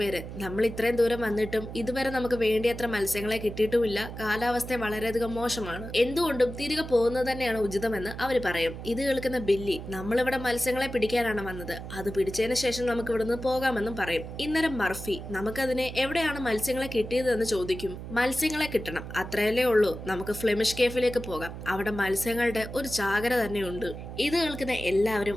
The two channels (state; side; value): noise; right; hum, 10 dB below the sound